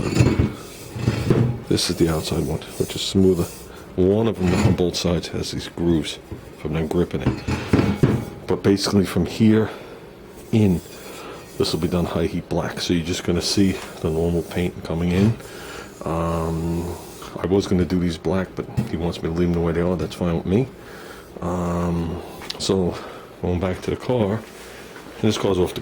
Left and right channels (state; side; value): identical; both; correlation 1.00